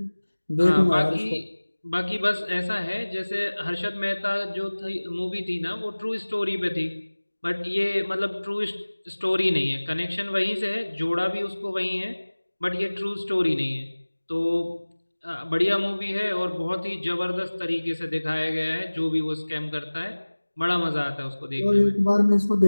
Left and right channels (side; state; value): both; inverted; correlation -1.00